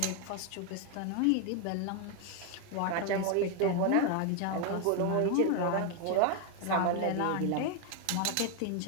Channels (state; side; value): different; both; correlation 0.01